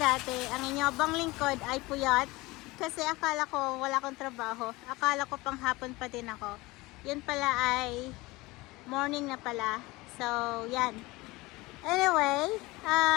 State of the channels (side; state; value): right; quieter; 21.6 dB